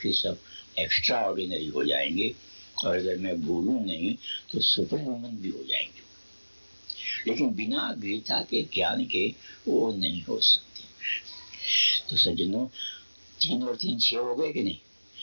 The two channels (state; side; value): inverted; both; correlation -1.00